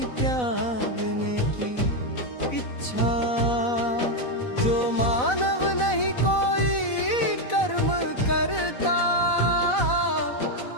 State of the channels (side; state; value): right; late; 4.0 ms